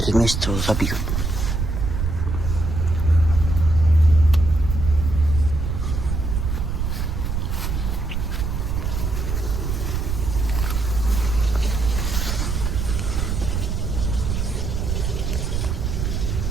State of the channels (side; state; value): right; noise; rumble, 1 dB below the sound